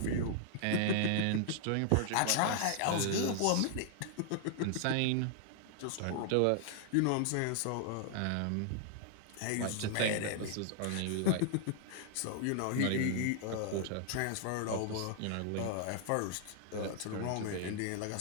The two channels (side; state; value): both; different; correlation 0.00